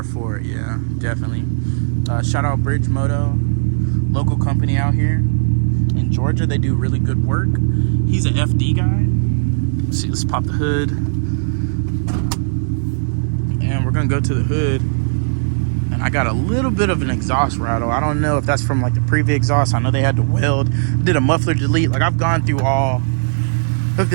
for it, yeah, definitely. Shout out Bridge Moto, local company out here in Georgia. They do really good work. He's an FD guy. Let's see, let's pop the hood. And we're gonna go to the hood. And I got a little bit of an exhaust rattle. I don't know if that's from like the previous exhaust. I know they had to weld. Did a muffler delete. Like, I've gone through all of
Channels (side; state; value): left; silent; digital silence